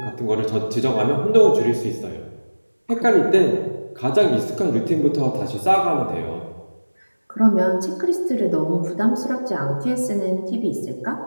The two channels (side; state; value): both; inverted; correlation -1.00